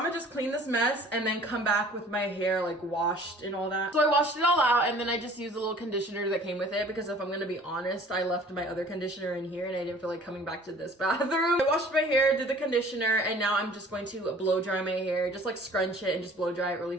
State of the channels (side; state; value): both; normal; correlation 0.50